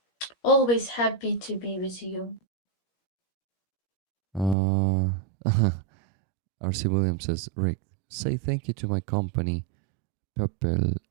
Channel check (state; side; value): drops out; left; at 4.5 s